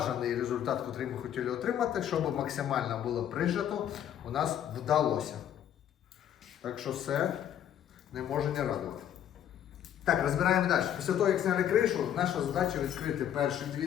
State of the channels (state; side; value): quieter; right; 10.2 dB